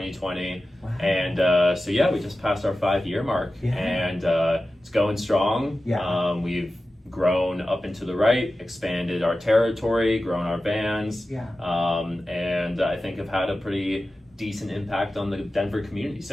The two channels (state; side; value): normal; both; correlation 0.94